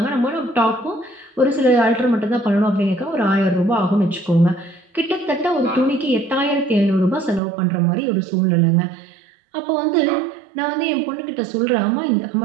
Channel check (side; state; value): left; drops out; at 7.4 s